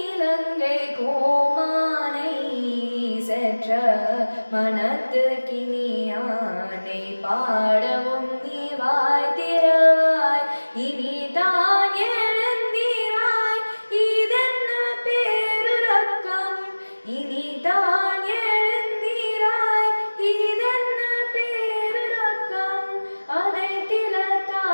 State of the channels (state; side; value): inverted; both; correlation -1.00